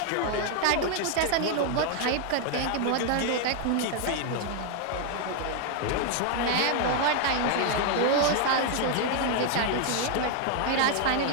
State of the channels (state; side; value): different; both; correlation 0.00